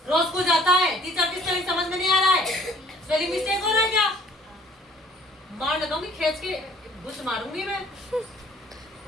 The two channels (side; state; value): both; normal; correlation 0.56